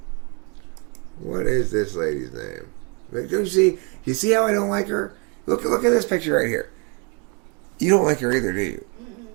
What is this lady's name? Like, do you see? You see how I don't like her? Look at this picture right here. You don't like her either, do you?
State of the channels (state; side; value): quieter; left; 34.3 dB